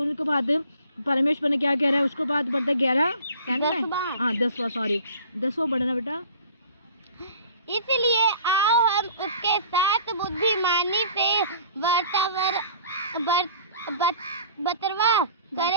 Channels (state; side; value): inverted; both; correlation -0.47